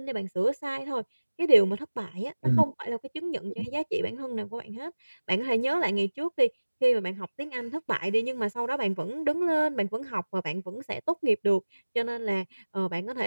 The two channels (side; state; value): both; inverted; correlation -1.00